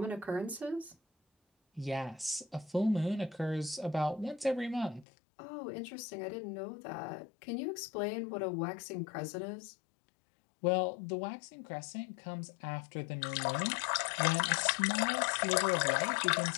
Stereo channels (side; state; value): right; drops out; at 5.1 s